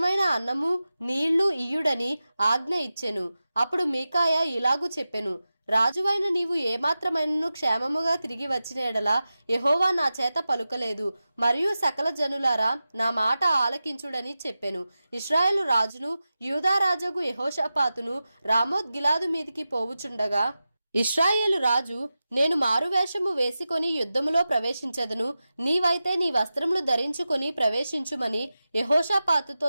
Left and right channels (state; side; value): inverted; both; correlation -0.94